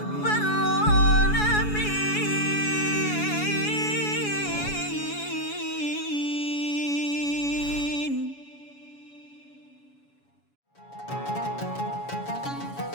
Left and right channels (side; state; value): right; late; 7.1 ms